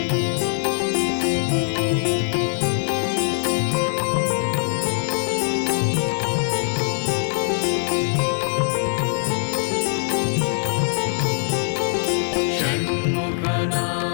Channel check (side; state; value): right; silent; 57 dB below the other